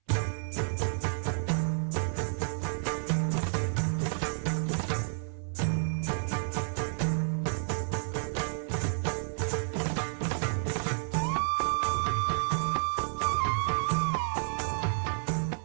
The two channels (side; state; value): left; silent; 57 dB below the other